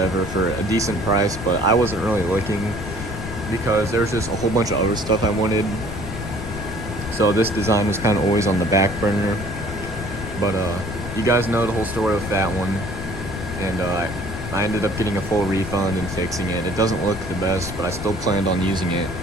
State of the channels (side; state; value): left; noise; rumble, 8 dB below the sound